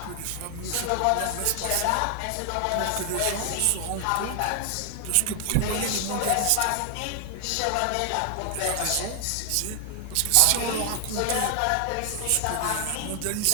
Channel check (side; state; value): both; different; correlation 0.00